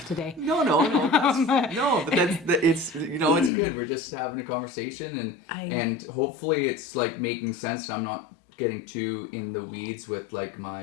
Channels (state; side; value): drops out; right; at 3.5 s